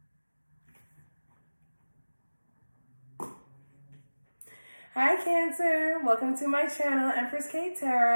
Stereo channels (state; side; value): inverted; both; correlation -1.00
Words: Hi Cancer, welcome to my channel,